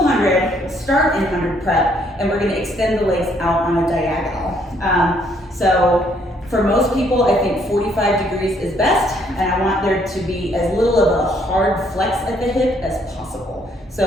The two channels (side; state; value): both; normal; correlation 0.67